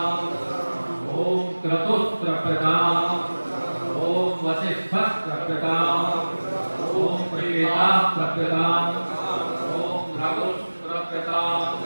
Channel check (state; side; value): inverted; both; correlation -1.00